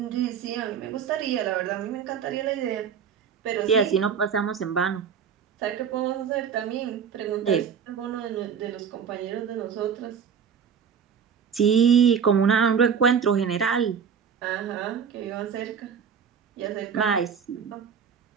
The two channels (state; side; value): quieter; left; 7.2 dB